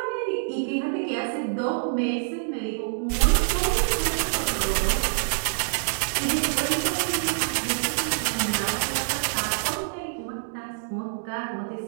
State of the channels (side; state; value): left; silent; digital silence